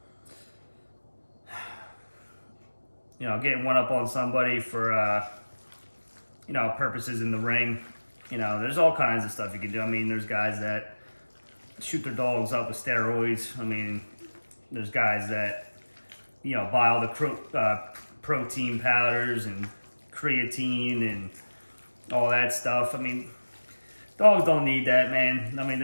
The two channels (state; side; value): inverted; both; correlation -1.00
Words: You know, getting one up on somebody for, you know, purposes in the ring. You know, there's all kinds of stuff you can do. I mean, there's guys that shoot their dogs up with steroids. I mean, there's guys that, you know, buy all the protein powders and creatine and all that stuff. I mean, dogs don't need that, man. I mean,